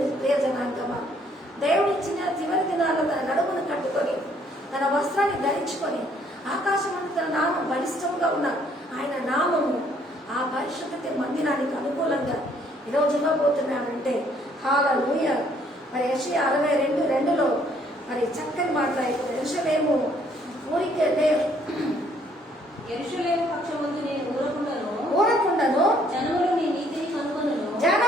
జనాంగమా, దేవుడు ఇచ్చిన చివరి దినాల్లో తన నడుమును కట్టుకొని, తన వస్త్రాన్ని ధరించుకొని, ఆకాశమందు తన నామం బలిష్టంగా ఉన్న ఆయన నామము ఆ పరిశుద్ధ మందిరానికి అనుకూలంగా ఈరోజు ఇవ్వబోతున్నాడంటే హల్లెలూయా. మరి యెషయా 62:2 మరి చక్కని మాట్లాడుతుంది. యెరూషలేము ఊరికే యెరూషలేము పక్షమందు నేను ఊరకుండను, జనములు నీ నీతిని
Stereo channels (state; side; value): normal; both; correlation 0.65